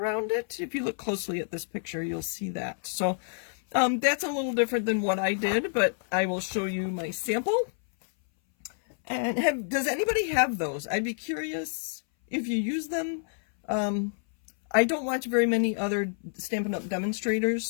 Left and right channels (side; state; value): right; silent; 59 dB below the other